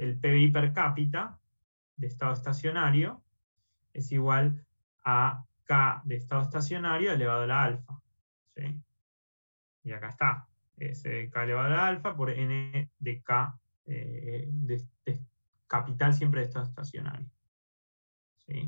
PBI per cápita de estado estacionario es igual a K de estado estacionario elevado a la alfa. ¿sí? Y acá está, es K elevado a la alfa por N de K de capital siempre de estado estacionario.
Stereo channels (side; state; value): both; inverted; correlation -1.00